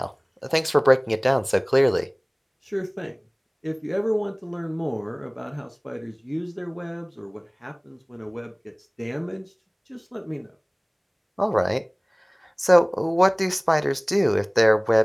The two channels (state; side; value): identical; both; correlation 1.00